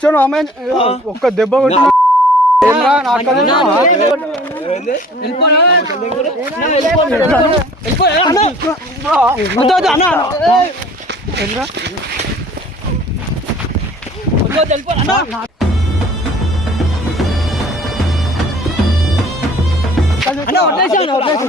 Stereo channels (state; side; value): normal; both; correlation 0.50